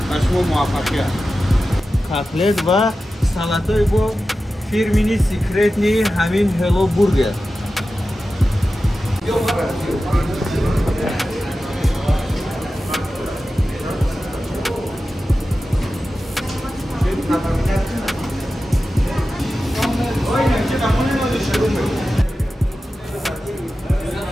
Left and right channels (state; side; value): normal; both; correlation 0.93